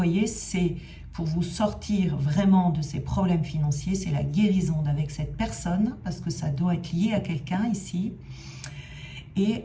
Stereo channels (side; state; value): both; identical; correlation 1.00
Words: c'est pour vous sortir vraiment de ces problèmes financiers, c'est la guérison avec cette personne, parce que ça doit être lié à quelqu'un ici. Et